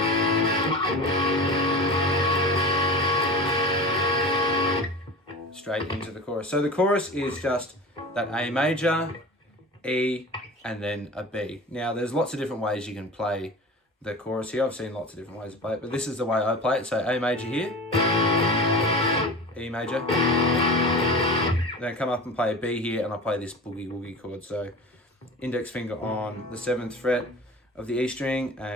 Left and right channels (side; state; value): both; normal; correlation 0.34